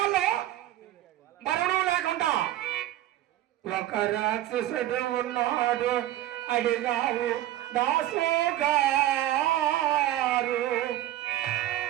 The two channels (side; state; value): left; quieter; 13.9 dB